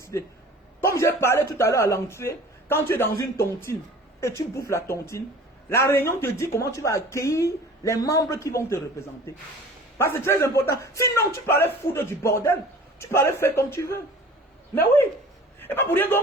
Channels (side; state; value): both; normal; correlation 0.44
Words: Comme j'ai parlé tout à l'heure à l'entrée, quand tu es dans une tontine et tu bouffes la tontine, la réunion te dit comment tu vas accueillir les membres qui vont te représenter. Parce que c'est très important. Sinon, tu parlais foutre du bordel. Tu parlais faire comme tu veux. Mais oui. Et pas pour rien